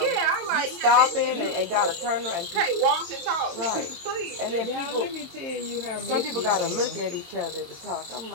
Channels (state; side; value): late; left; 23 ms